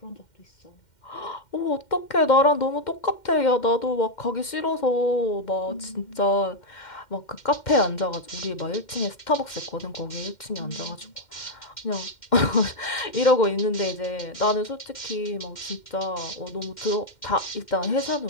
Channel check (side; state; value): right; late; 2.1 ms